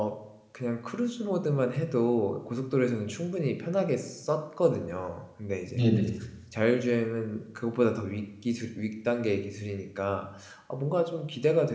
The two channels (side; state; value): both; identical; correlation 1.00